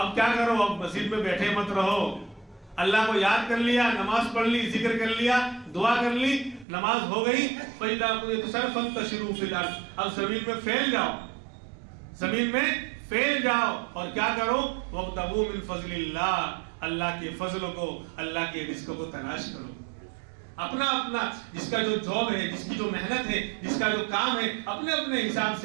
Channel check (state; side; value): drops out; left; at 6.7 s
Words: کیا کرو؟ اب مسجد میں بیٹھے مت رہو. اللہ کو یاد کر لیا، نماز پڑھ لی، ذکر کر لیا، دعا کر لی، نماز ہو گئی، فَإِذَا قُضِيَتِ الصَّلَاةُ فَانتَشِرُوا فِي الْأَرْضِ. اب زمین میں پھیل جاؤ، زمین میں پھیل جاؤ، اور کیا کرو؟ وَابْتَغُوا مِن فَضْلِ اللَّهِ. اللہ کے فضل کو، اللہ کے رزق کو تلاش کرو. اپنا جس کا جو جاب ہے، جس کی جو محنت ہے، جس کا جو کام ہے، اپنے حساب